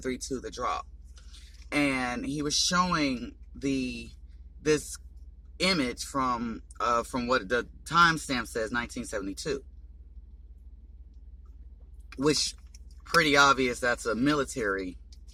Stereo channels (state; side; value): identical; both; correlation 1.00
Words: The Drop, and he was showing this image from what the timestamp says, 1972. Which, pretty obvious, that's a military